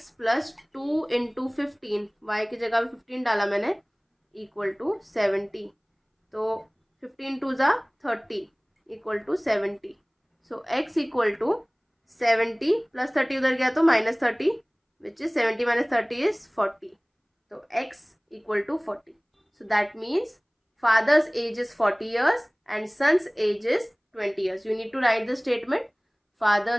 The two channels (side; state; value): both; identical; correlation 1.00